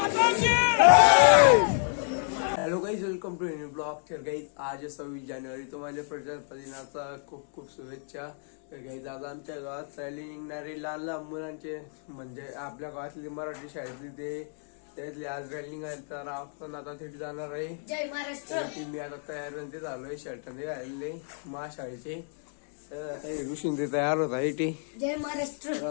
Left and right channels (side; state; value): right; silent; 58 dB below the other